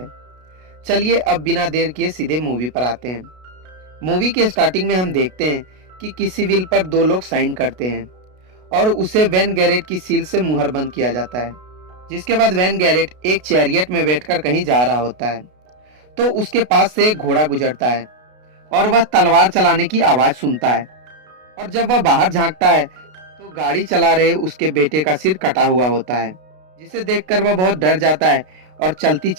चलिए अब बिना देर किए सीधे मूवी पर आते हैं। मूवी के स्टार्टिंग में हम देखते हैं कि किसी विल पर दो लोग साइन करते हैं और उसे वैन गैरेट की सील से मुहर बंद किया जाता है। जिसके बाद वैन गैरेट एक चैरियट में बैठकर कहीं जा रहा होता है, तो उसके पास से एक घोड़ा गुजरता है और वह तलवार चलाने की आवाज सुनता है। और जब वह बाहर झांकता है तो गाड़ी चला रहे उसके बेटे का सिर कटा हुआ होता है, जिसे देखकर वह बहुत डर जाता है और चलती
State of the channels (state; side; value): late; left; 33 ms